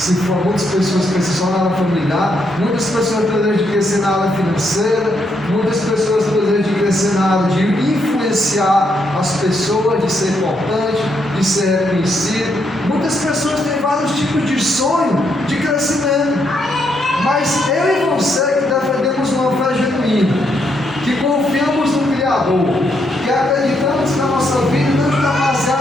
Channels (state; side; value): normal; both; correlation 0.77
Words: for muitas pessoas que crescem só na área familiar, muitas pessoas têm o desejo de crescer na área financeira, muitas pessoas têm o desejo de crescer na área de influenciar as pessoas, de ser importante, de ser reconhecido. Muitas pessoas têm vários tipos de sonho de crescimento. Mas eu e você que defendemos uma fé genuína, que confiamos no Criador, que acreditamos que a nossa vida não está